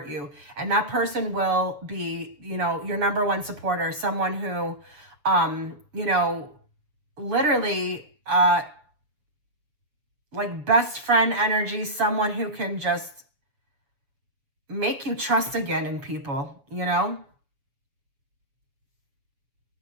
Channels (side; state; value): left; late; 7.0 ms